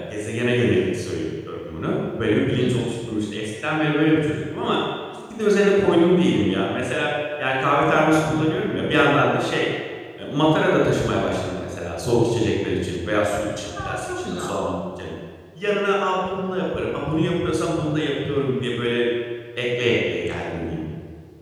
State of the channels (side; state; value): both; identical; correlation 1.00